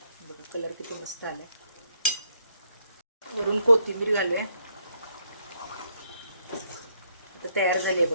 कलर किती मस्त आलाय. वरून कोथिंबीर घालूया. आता तयार झाली आहे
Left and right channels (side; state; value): both; inverted; correlation -0.72